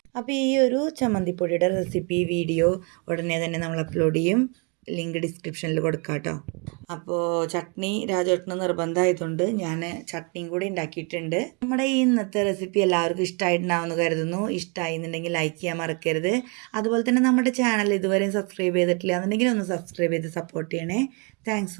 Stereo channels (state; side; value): quieter; left; 33.9 dB